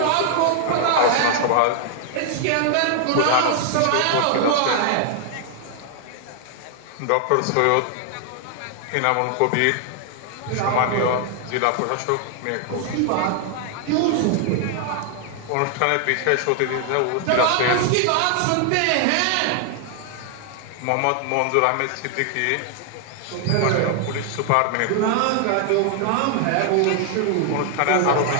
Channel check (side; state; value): both; different; correlation 0.00